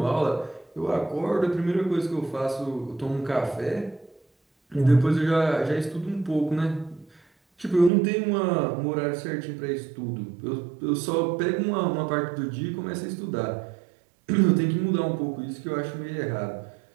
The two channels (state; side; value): drops out; left; at 7.9 s